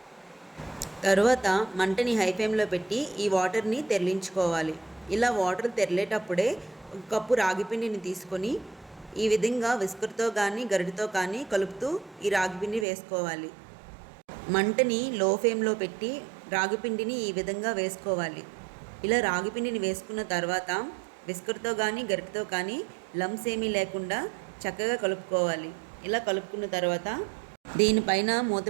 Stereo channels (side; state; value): left; drops out; at 12.9 s